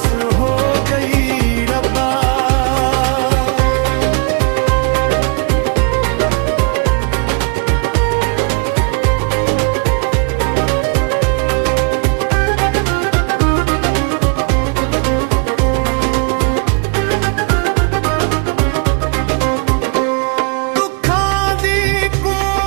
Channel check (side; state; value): left; quieter; 37.1 dB